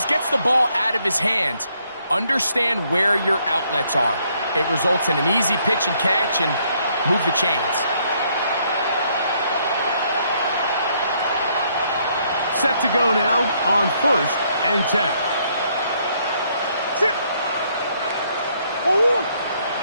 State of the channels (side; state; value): both; inverted; correlation -0.70